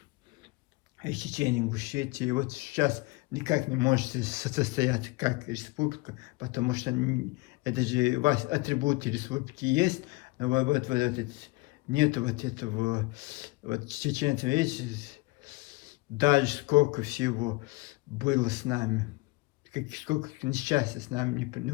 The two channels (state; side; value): quieter; right; 24.1 dB